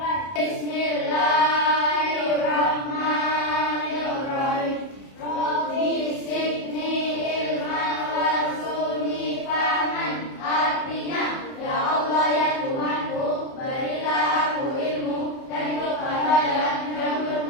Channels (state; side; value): late; right; 30 ms